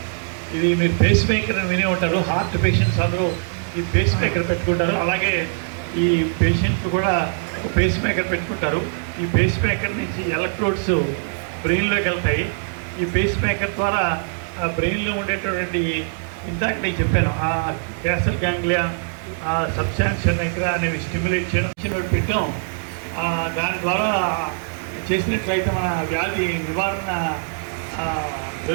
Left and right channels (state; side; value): silent; left; 64 dB below the other